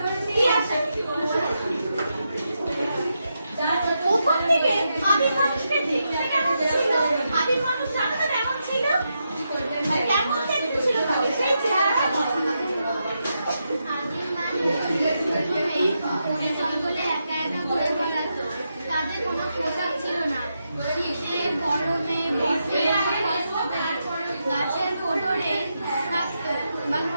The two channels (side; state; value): both; inverted; correlation -0.85